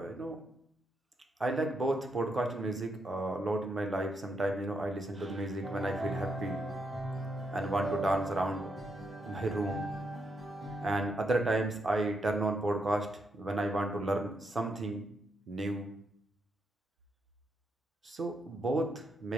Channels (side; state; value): both; normal; correlation 0.80